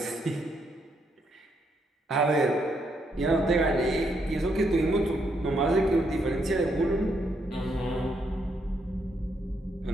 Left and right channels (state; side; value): normal; both; correlation 0.76